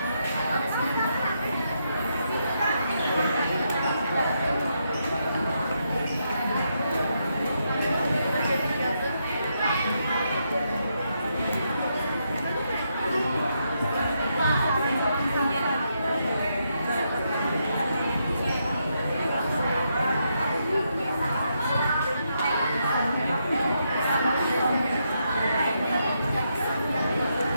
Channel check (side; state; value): both; inverted; correlation -0.80